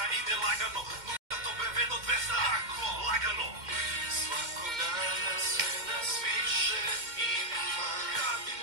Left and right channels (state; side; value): late; left; 2.1 ms